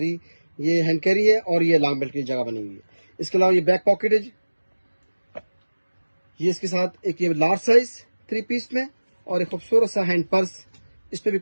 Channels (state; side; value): inverted; both; correlation -1.00